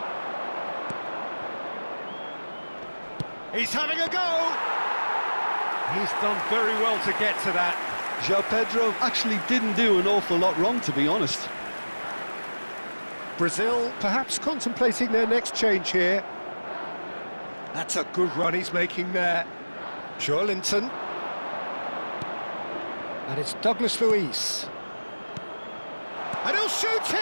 He's having a go! He's done very well to get to that. João Pedro actually didn't do an awful lot wrong, to be honest. Brazil perhaps contemplating their next change here. That's a good run he's making there. Joelinton. And it's Douglas Luiz. And he'll shoot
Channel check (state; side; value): inverted; both; correlation -1.00